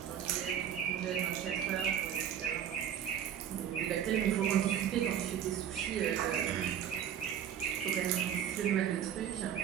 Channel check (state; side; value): quieter; left; 9.4 dB